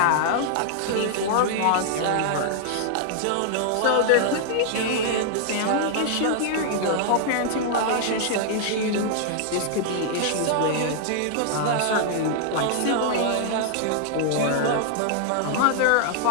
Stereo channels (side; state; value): both; different; correlation -0.01